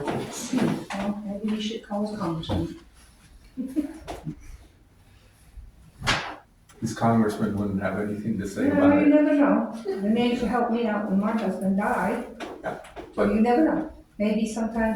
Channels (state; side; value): identical; both; correlation 1.00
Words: Well, maybe you should call the congressman. This congressman wouldn't have anything to say You about it. never know. The man used to help me out when my husband died. So But- you never know. Maybe